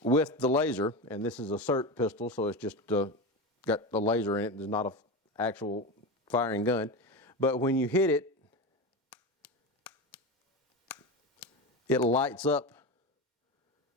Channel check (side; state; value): both; normal; correlation 0.21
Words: with the laser, and this is a SIRT pistol, so it's just got the laser in it. There's not an actual firing gun. But when you hit it, it lights up